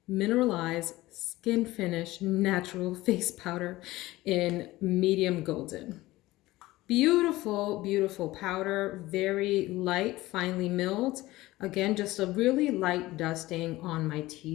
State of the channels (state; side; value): quieter; right; 18.1 dB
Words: Mineralized Skin Finish Natural Face Powder in Medium Golden. Beautiful, beautiful powder, very light, finely milled. Again, just a really light dusting on my